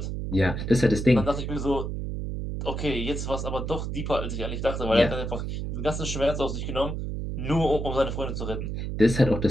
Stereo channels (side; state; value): right; noise; hum, 4 dB below the sound